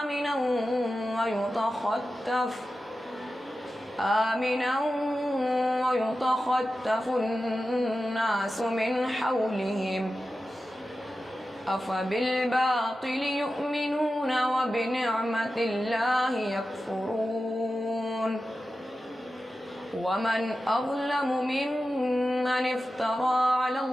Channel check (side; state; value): both; normal; correlation 0.93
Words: آمنا ويتخطف الناس من حولهم أفبالباطل يؤمنون وبنعمة الله يكفرون. ومن أظلم ممن افترى على